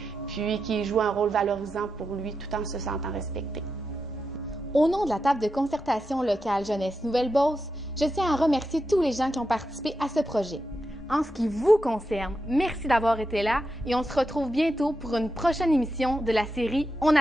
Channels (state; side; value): normal; both; correlation 0.88